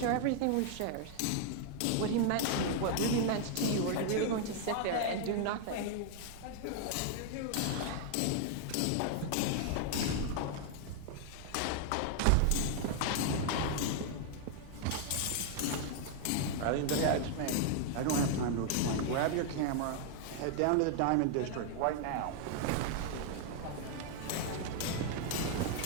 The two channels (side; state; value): both; different; correlation 0.00